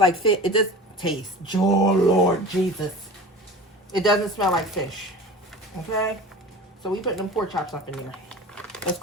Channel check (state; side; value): normal; both; correlation 0.36